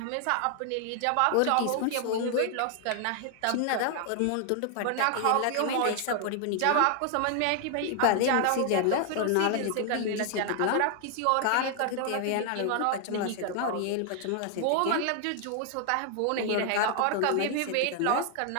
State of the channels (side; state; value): both; different; correlation 0.00